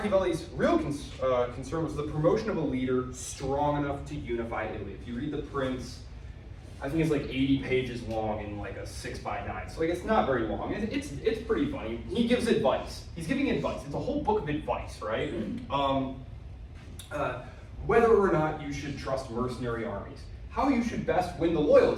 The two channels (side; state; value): both; identical; correlation 1.00